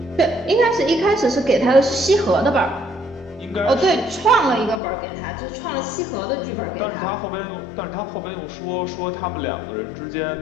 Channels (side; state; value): right; drops out; at 4.8 s